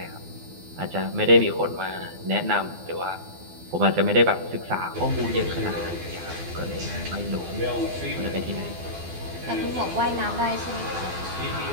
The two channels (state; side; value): late; left; 12 ms